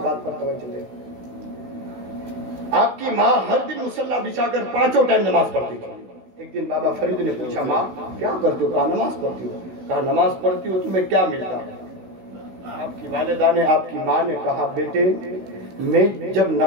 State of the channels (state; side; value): late; left; 16 ms